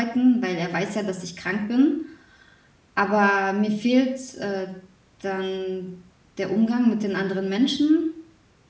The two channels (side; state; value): both; identical; correlation 1.00